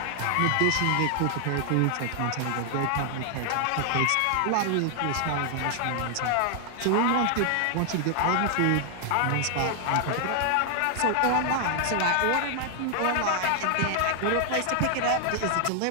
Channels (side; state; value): both; different; correlation 0.00